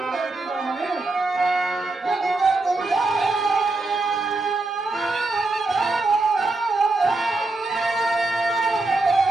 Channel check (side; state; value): left; quieter; 3.2 dB